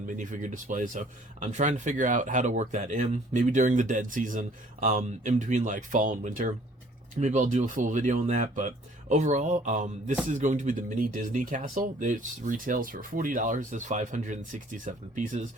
minifigure display, so I'm trying to figure out how to work that in, maybe during the dead season, in between like fall and winter. Maybe I'll do a full video on that, but overall, this is going to be the mini Disney castle. It retails for $40, has 567 pieces,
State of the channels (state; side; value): normal; both; correlation 0.56